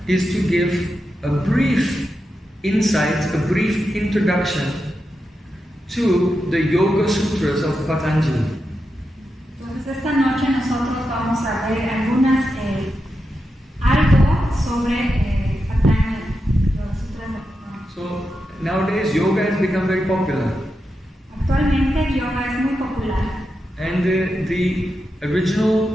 is to give a brief insight, a brief introduction to the Yoga Sutras of Patanjali. Entonces esta noche nosotros vamos a ver algo sobre Patanjali, los Sutras de Patanjali. So nowadays yoga has become very popular. Actualmente el yoga es muy popular. And the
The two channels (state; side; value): normal; both; correlation 0.88